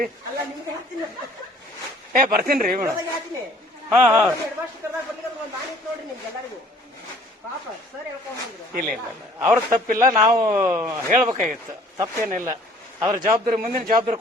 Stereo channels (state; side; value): normal; both; correlation 0.55